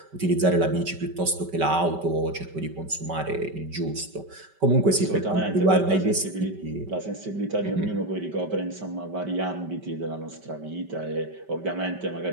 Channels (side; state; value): left; late; 5.2 ms